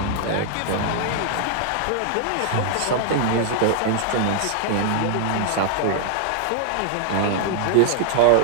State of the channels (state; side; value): different; both; correlation -0.01